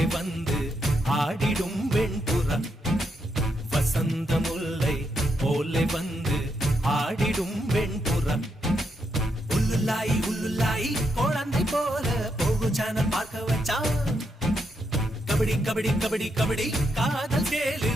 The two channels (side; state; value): both; normal; correlation 0.80